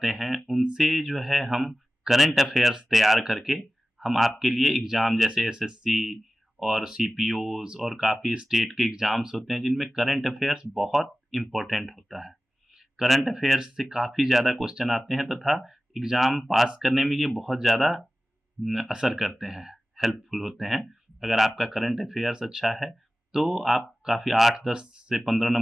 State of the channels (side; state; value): both; normal; correlation 0.96